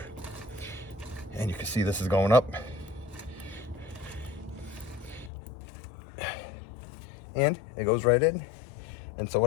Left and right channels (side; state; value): right; drops out; at 5.3 s